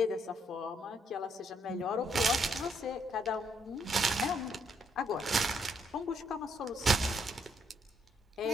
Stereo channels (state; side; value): normal; both; correlation 0.73